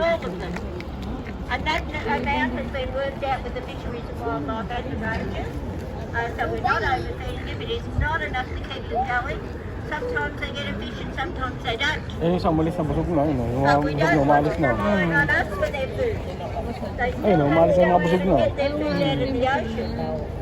of them. And that amount has been worked out with the Fisheries and Wildlife and the rangers. So we're not overfeeding them. It is not enough to keep them going. Sometimes they get a fish and sometimes they don't. Ayun yung umalis na busog na. Yung But we busog don't na want umalis them na. relying on us for their food. They Ayun o, umalis na yung mga busog na. get their food out of the ocean.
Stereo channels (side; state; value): both; identical; correlation 1.00